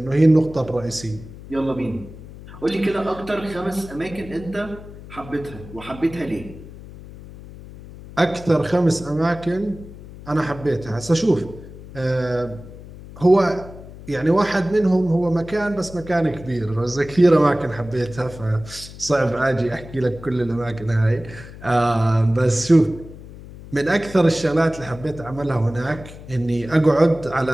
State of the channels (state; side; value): noise; left; hum, 16 dB below the sound